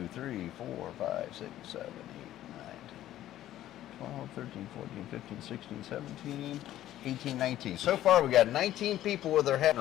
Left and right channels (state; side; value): quieter; right; 13.2 dB